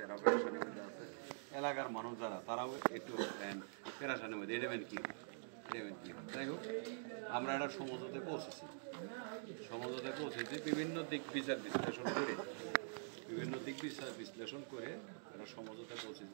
এরাও পেরেশানির মধ্যে আছে। এলাকার মানুষ যারা তারাও একটু পেরেশানির মধ্যে এডেমেন্ট কী হয়। যাই হোক আমরা একটা সমঝোতায় পৌঁছেছি, বিভিন্ন দিক বিচার বিশ্লেষণ করে একটা সমঝোতায়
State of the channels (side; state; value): left; silent; digital silence